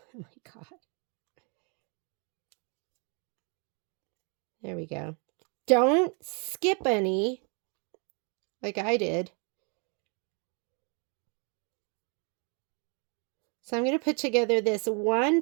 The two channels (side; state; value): left; quieter; 37.0 dB